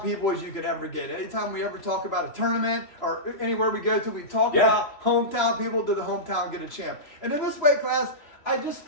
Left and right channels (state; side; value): late; right; 3.0 ms